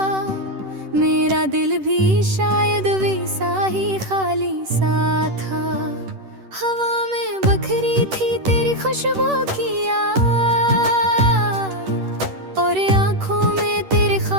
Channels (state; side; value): late; left; 10 ms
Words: मेरा दिल भी शायद वैसा ही खाली सा था। हवा में बखरी थी तेरी खुशबू की याद, और आँखों में तेरे